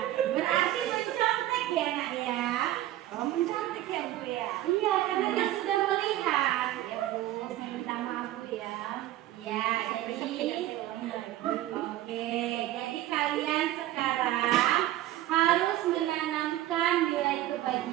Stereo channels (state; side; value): quieter; left; 14.4 dB